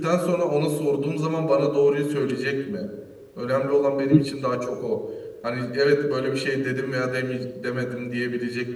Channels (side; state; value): both; identical; correlation 1.00